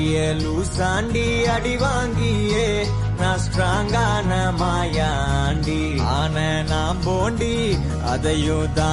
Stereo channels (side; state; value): both; identical; correlation 1.00